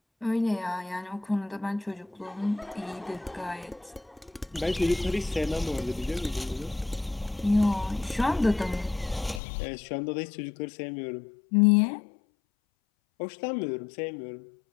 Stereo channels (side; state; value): right; drops out; at 9.4 s